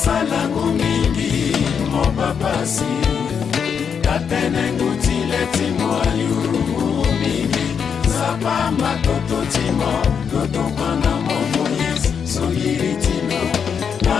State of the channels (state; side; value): quieter; right; 6.9 dB